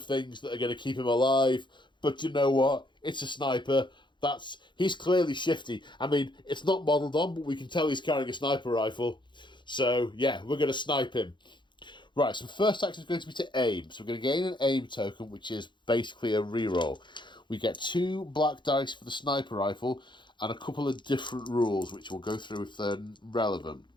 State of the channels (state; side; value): late; right; 0.23 ms